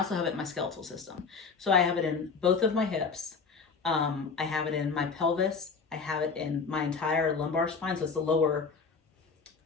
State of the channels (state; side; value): quieter; right; 5.1 dB